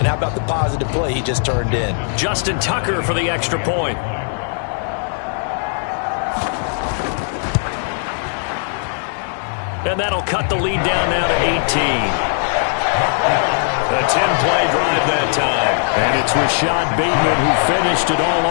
how about the positive play he just turned in? Justin Tucker for the extra point. And that'll cut the lead down now to 18. A 10-play drive that time. And it's Rashad Bateman who finished it all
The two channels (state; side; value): silent; right; 65 dB below the other